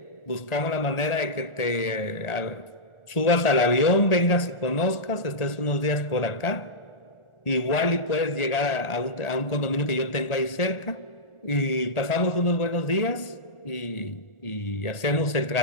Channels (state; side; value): late; right; 1.4 ms